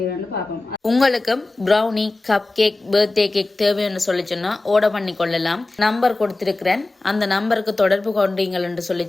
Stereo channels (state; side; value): quieter; right; 3.0 dB